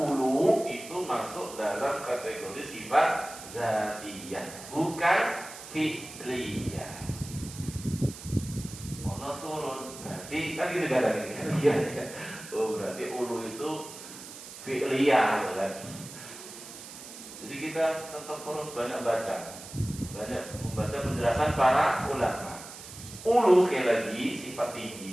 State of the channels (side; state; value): right; noise; hiss, 14 dB below the sound